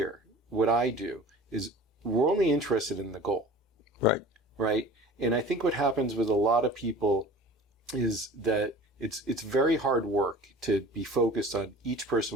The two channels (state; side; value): normal; both; correlation 0.42